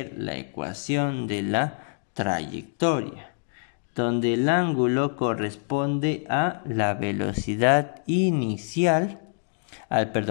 la ecuación de la trayectoria, donde el ángulo corresponde a la velocidad inicial,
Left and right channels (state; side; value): silent; right; digital silence